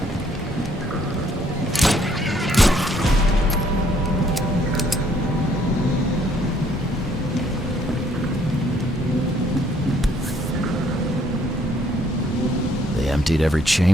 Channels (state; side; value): normal; both; correlation 0.65